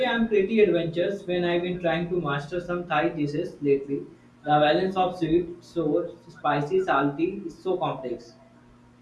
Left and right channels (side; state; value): both; identical; correlation 1.00